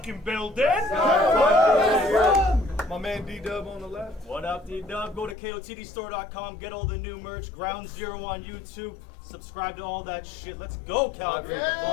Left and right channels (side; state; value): right; drops out; at 5.4 s